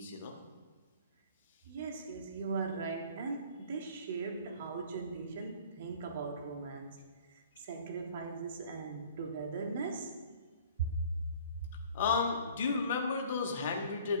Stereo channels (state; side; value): inverted; both; correlation -0.51